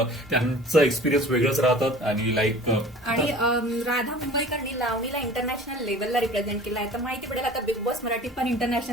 त्यांचं एक्सपिरियन्स वेगळंच राहतात. आणि लाईक आणि राधा मुंबईकरनी लावणीला इंटरनॅशनल लेवलला रिप्रेझेंट केलं आहे. तर माहिती पडेल आता बिग बॉस मराठी पण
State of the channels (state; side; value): normal; both; correlation 0.43